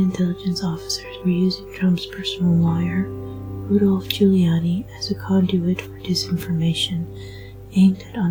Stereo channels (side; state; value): both; identical; correlation 1.00